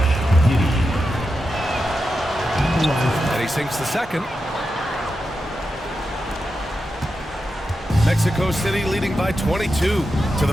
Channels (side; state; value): both; normal; correlation 0.89